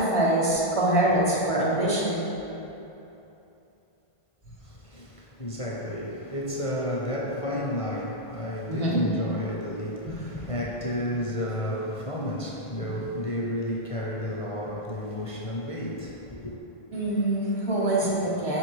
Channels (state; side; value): late; right; 1.5 ms